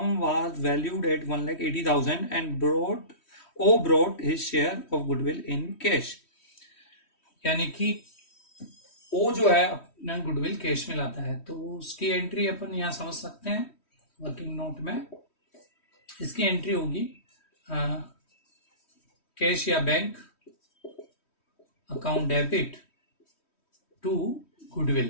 was valued at 1,80,000 and brought his share of goodwill in cash. यानी कि ओ जो है अपना गुडविल कैश में लाता है, तो उसकी एंट्री अपन यहां समझ सकते हैं वर्किंग नोट में। इसकी एंट्री होगी कैश या bank account debit to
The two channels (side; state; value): right; late; 3.1 ms